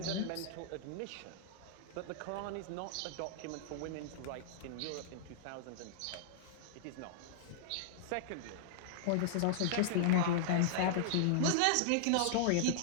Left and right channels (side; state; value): both; different; correlation -0.02